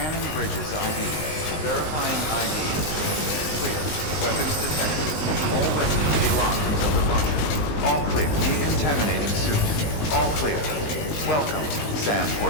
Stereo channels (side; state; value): right; late; 19 ms